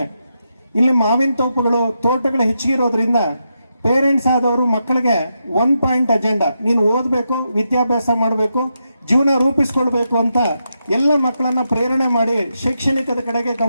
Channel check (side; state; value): both; inverted; correlation -0.85